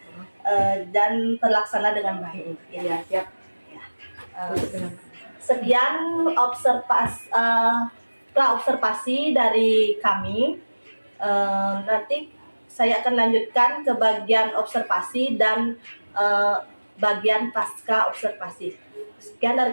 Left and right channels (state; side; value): inverted; both; correlation -1.00